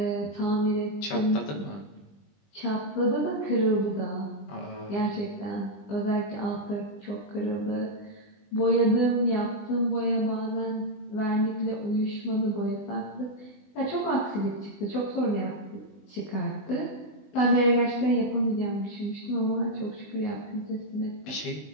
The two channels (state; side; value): late; right; 20 ms